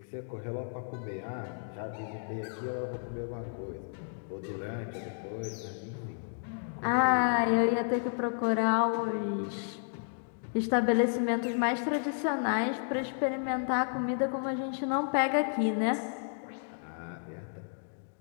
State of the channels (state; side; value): silent; right; digital silence